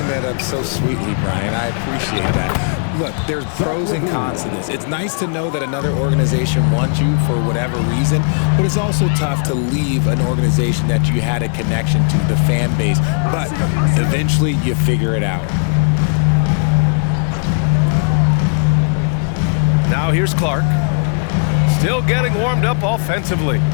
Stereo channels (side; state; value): right; silent; 60 dB below the other